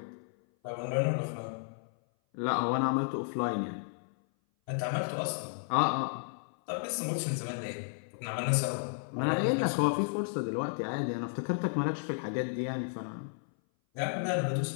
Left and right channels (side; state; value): right; silent; 56 dB below the other